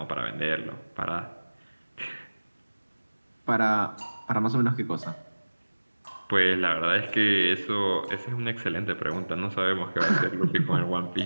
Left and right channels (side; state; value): both; inverted; correlation -1.00